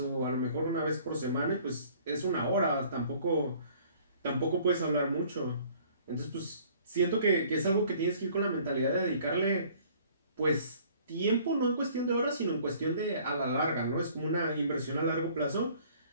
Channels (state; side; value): inverted; both; correlation -0.55